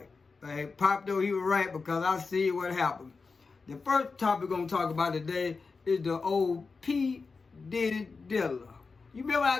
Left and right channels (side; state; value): right; quieter; 4.5 dB